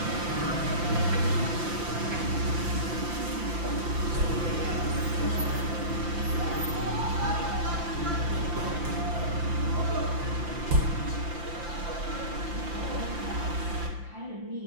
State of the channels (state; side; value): late; left; 5.8 ms